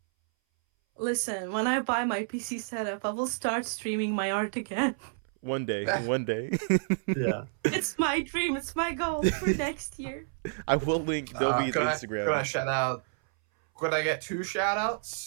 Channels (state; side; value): silent; left; 58 dB below the other